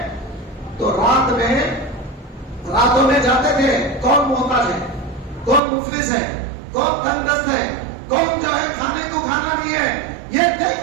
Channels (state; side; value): drops out; left; at 5.6 s